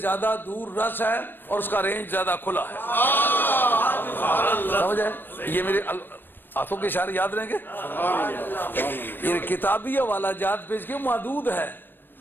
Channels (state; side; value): late; right; 0.095 ms